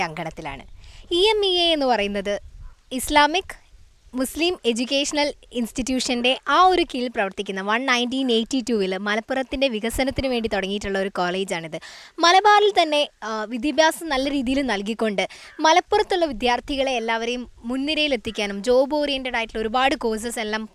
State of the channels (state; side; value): identical; both; correlation 1.00